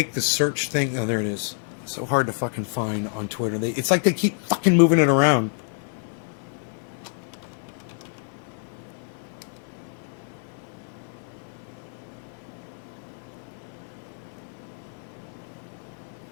the search thing? Oh, there it is. It's so hard to fucking find on Twitter. It's like they keep fucking moving it around.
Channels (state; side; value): silent; right; 60 dB below the other